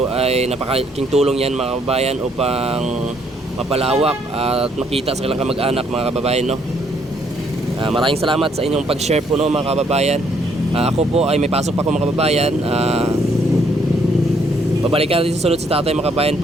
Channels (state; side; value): normal; both; correlation 0.68